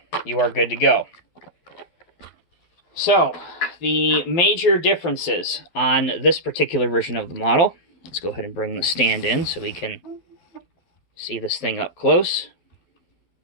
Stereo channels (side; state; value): right; late; 11 ms